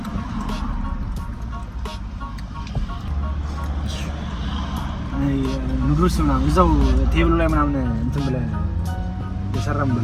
ኑዶልስ ምናምን እዛው ቴብሉ ላይ ምናምን እንትን ብለህ የሰራም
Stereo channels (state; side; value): identical; both; correlation 1.00